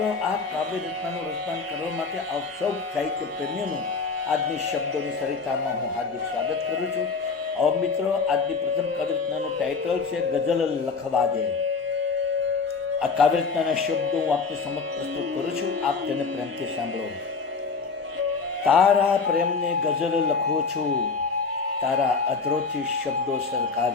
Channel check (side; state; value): right; quieter; 4.8 dB